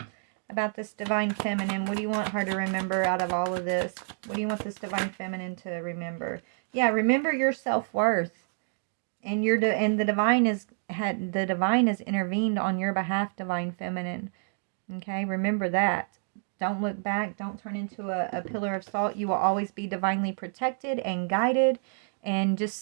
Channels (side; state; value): left; silent; 59 dB below the other